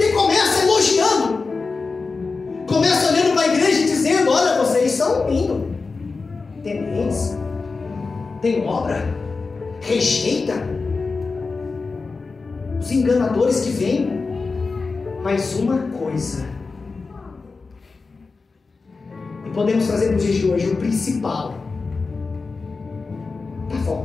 começa elogiando, começa olhando para a igreja e dizendo: olha, vocês são lindos, tementes, tem obra, rejeita os enganadores que vêm. Mas uma coisa, e podemos trazer nos dias de hoje, o principal está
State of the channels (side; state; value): right; quieter; 4.2 dB